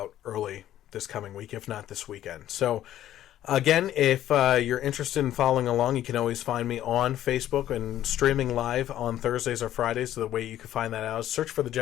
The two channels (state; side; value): quieter; right; 12.4 dB